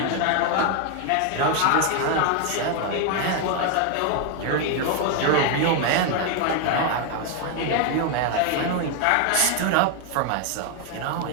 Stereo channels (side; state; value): both; different; correlation 0.01